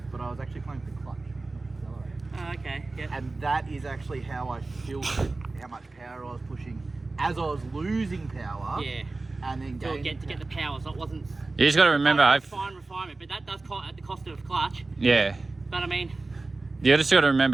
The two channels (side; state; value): left; quieter; 3.4 dB